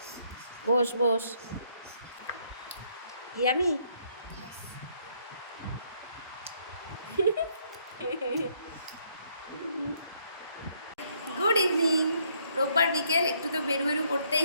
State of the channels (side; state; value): both; inverted; correlation -0.69